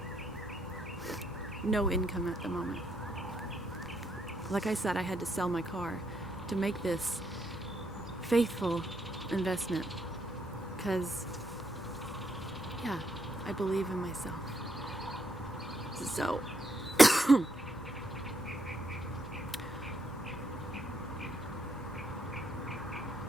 no income at the moment. Like I said, I had to sell my car to make this faithful investment, because, yeah, I believe in myself. So,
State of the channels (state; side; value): normal; both; correlation 0.75